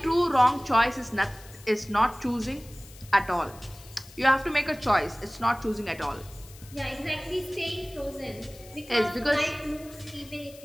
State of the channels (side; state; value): left; noise; hiss, 21 dB below the sound